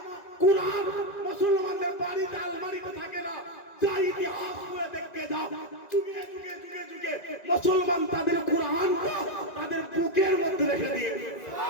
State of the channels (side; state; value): right; late; 2.0 ms